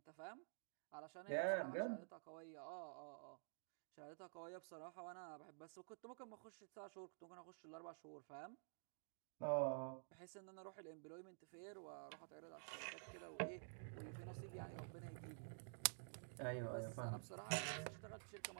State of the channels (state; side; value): silent; left; digital silence